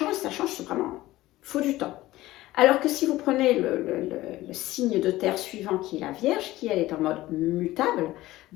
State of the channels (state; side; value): quieter; right; 16.9 dB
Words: c'est vraiment, il faut du temps. Alors que si vous prenez le signe de terre suivant, qui est la Vierge, qui elle est en mode mutable,